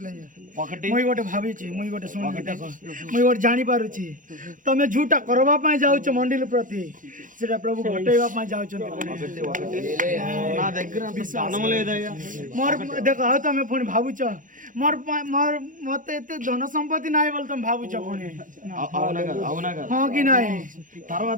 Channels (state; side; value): late; left; 0.38 ms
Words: ఒకటి ମୁଇଁ ଗୋଟେ ଭାବିଛି ମୁଇଁ ଗୋଟେ ଶୁଣିକି ଦେଖ ମୁଇଁ ଗୋଟେ ଜାଣିପାରୁଛି ତମେ ଝୁଟା କରିବା ପାଇଁ ଯାଉଛ ମଣ୍ଡିଲ ପ୍ରତି ସେଟା ପ୍ରଭୁ ଘଟେଇବା ପାଇଁ ଯାଉଛନ୍ତି నా దగ్గర ధనం లేదయ్యా ମୋର ଦେଖ ଆଉ ତମେ ପୁଣି ଭାବୁଛ ମତେ ଏତେ ଧନ ସମ୍ପତ୍ତି ନାହିଁ ବୋଲି ତମେ ଭାବୁଛ ପୁଣି ହଁ କି ନାହିଁ